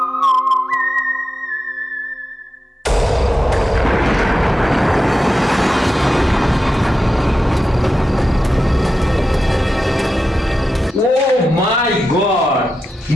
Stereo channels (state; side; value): normal; both; correlation 0.90